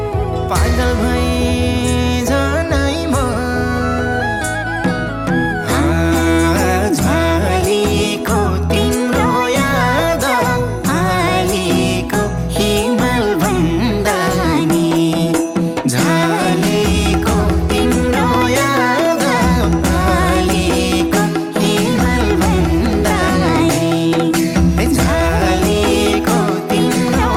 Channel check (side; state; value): both; identical; correlation 1.00